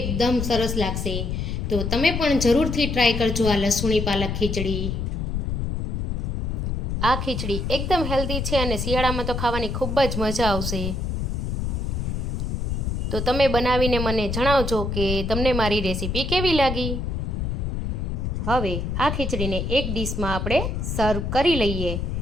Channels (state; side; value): noise; left; rumble, 2 dB below the sound